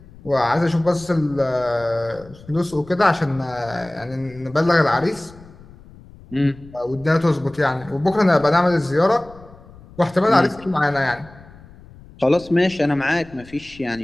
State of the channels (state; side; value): noise; left; rumble, 22 dB below the sound